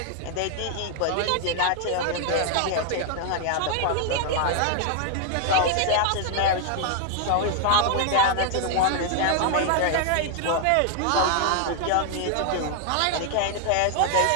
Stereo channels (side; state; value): both; different; correlation 0.00